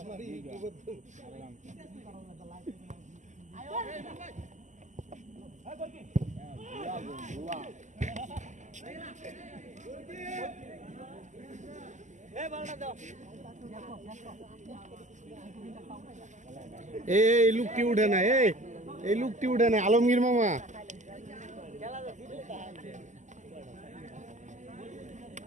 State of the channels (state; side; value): late; left; 0.35 ms